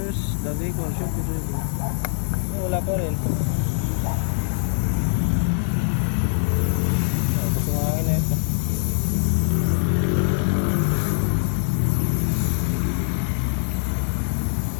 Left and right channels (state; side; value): silent; right; digital silence